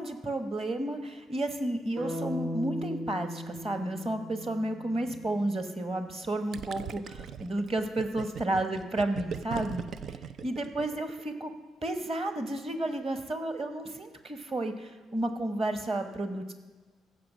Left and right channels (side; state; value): both; normal; correlation 0.85